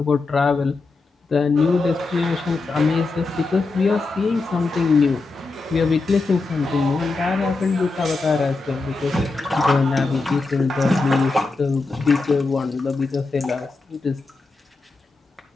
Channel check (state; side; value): quieter; right; 3.7 dB